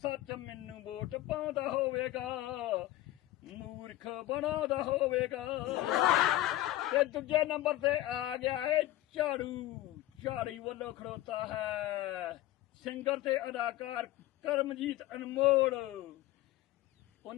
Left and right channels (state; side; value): quieter; right; 15.5 dB